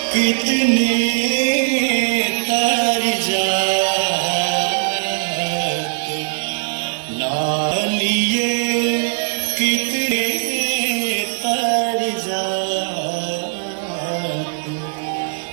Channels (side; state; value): left; silent; 59 dB below the other